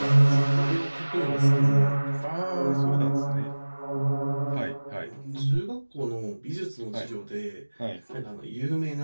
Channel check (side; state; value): both; inverted; correlation -1.00